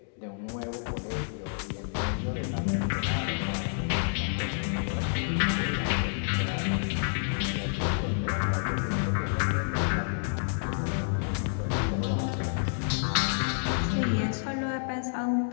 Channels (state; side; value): silent; right; digital silence